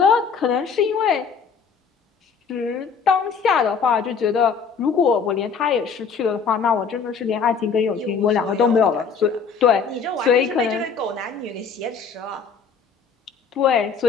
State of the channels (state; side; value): quieter; right; 5.8 dB